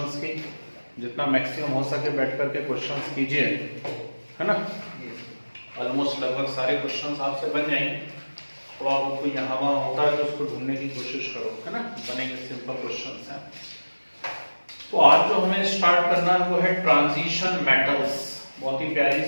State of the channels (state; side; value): inverted; both; correlation -1.00